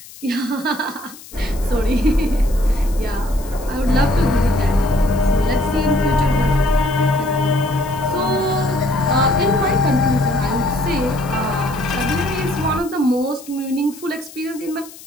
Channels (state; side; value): noise; left; hiss, 18 dB below the sound